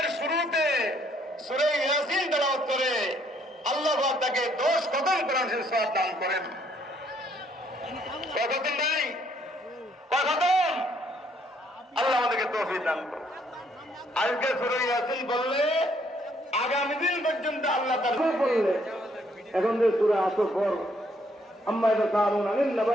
শুরুতে সূরা ইয়াসিন তেলাওয়াত করে, আল্লাহ পাক তাকে 10 খতম কোরআন শরীফ সওয়াব দান করেন। কতদিন নাই, কতদিন আল্লাহ আমাদেরকে তৌফিক দান করুন। আজকে সূরা ইয়াসিন বললে আগামী দিন পর্যন্ত আল্লাহ তাআলা বললে। এখন যে সূরা আসর পর আম্মা ইয়াতাসাআলুনা আনিন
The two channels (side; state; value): both; normal; correlation 0.68